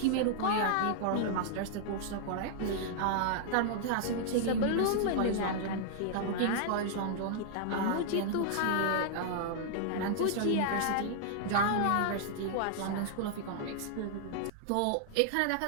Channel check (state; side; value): different; both; correlation -0.01